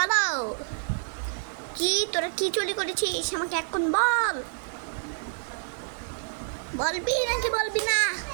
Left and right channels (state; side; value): silent; left; 56 dB below the other